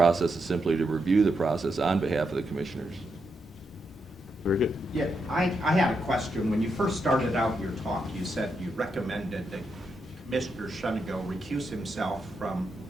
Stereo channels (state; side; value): normal; both; correlation 0.83